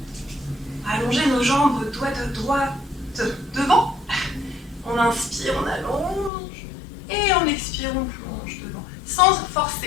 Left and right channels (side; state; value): right; drops out; at 6.3 s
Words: Allonger nos jambes doigts de droite devant. On inspire, on allonge. Et on expire, on plonge devant. Sans